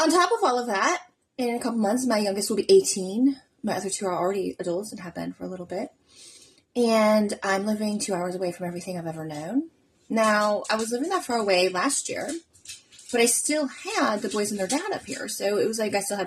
top of all of that, in a couple months, my youngest will be 18. My other two are already adults and have been for a little bit. And I'm living 2 hours away from everything I've ever known. Now, I was living that far away last year, but I still had the boys and their dad up here. So it was like I still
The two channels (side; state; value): both; identical; correlation 1.00